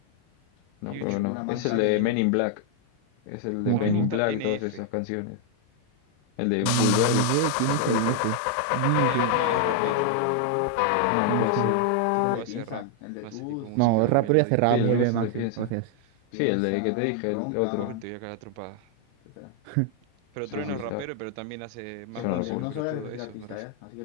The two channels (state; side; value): different; both; correlation 0.00